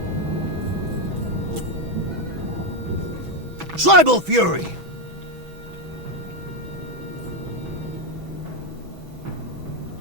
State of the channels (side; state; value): left; late; 6.1 ms